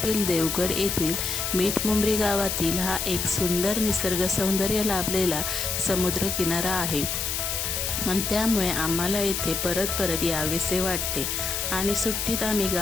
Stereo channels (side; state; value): left; noise; hiss, 1 dB below the sound